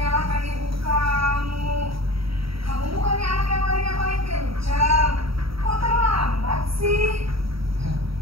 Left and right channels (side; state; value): left; late; 0.75 ms